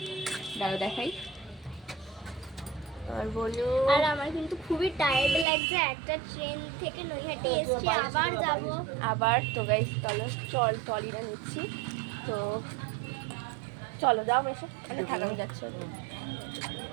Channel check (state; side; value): drops out; left; at 5.5 s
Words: দাঁড়ো দেখাই আর বনু। আর আমার কিন্তু খুবই টায়ার্ড লাগছে, একটা ট্রেন থেকে নৈহাটি এসছি, আবার যাব আবার। তো গাইস চলো ট্রলিটা নিচ্ছি, তো চলো যাও এসে মানে থাকানো যাচ্ছে।